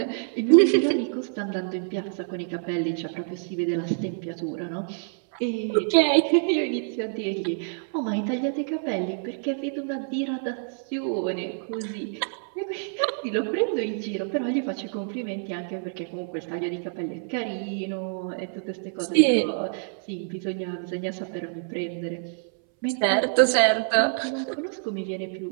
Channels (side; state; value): left; silent; 60 dB below the other